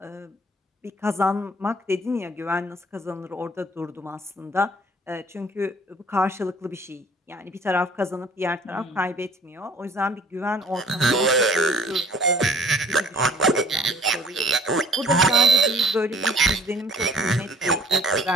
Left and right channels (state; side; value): normal; both; correlation 0.54